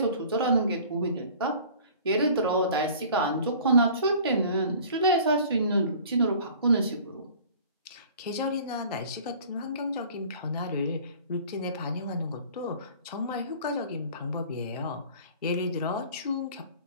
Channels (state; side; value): inverted; both; correlation -0.47